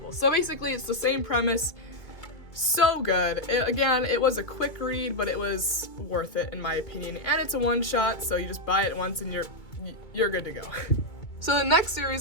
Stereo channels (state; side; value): late; right; 2.3 ms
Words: So basically it's the same premise. So good. Again, it was a quick read, but it was worth it in my opinion, and it's a one-shot, so you just buy it once and you're good to go. So the next